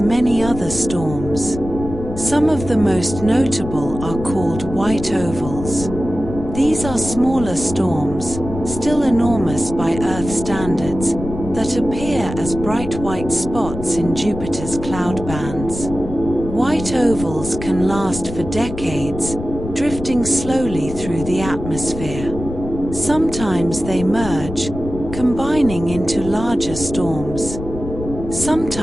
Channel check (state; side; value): noise; left; rumble, 9 dB below the sound